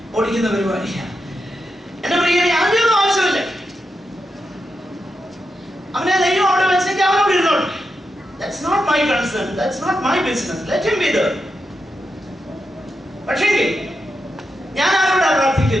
ഓടിക്കുന്ന പരിപാടിയാണ്. എന്റെ പ്രിയനെ അതിനൊന്നും ആവശ്യമില്ല. അവനെ ദൈവം അവിടെ വെച്ചേക്ക്, അവനോട് ഇരുന്നോട്ടെ. That's not my concern, that's not my business, let him be there. പക്ഷേ ഞാൻ ആരോടാണ്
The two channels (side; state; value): both; normal; correlation 0.86